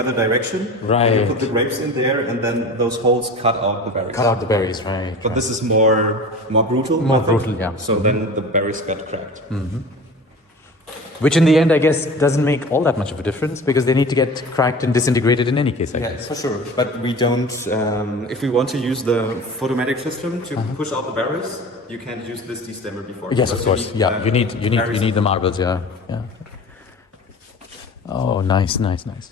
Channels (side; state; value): both; normal; correlation 0.37